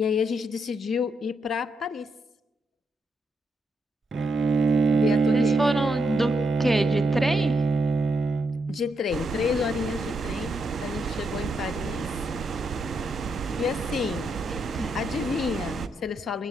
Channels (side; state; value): both; normal; correlation 0.80